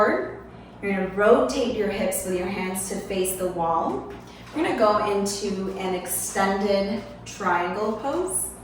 You're gonna rotate your hips with your hands to face the wall. We're gonna go into an extended triangle pose.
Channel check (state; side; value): identical; both; correlation 1.00